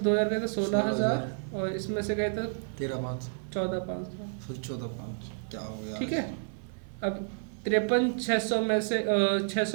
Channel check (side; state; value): left; silent; digital silence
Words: 2000 गए तो 16000, और इसमें से गए तो 13500, 14500। 14500 क्या हो गया? ठीक है, अब 53,600 में से